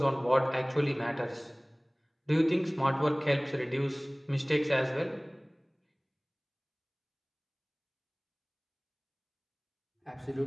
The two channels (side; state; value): both; identical; correlation 1.00